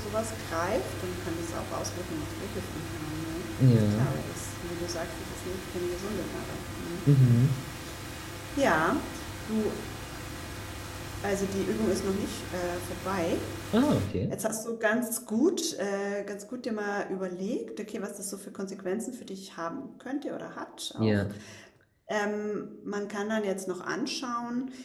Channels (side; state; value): both; identical; correlation 1.00